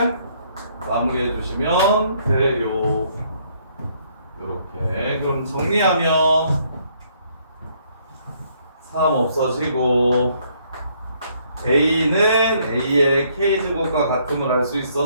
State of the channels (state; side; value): inverted; both; correlation -0.68